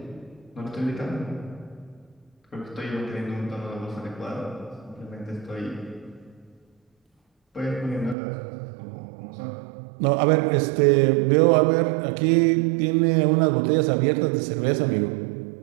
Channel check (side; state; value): left; drops out; at 8.2 s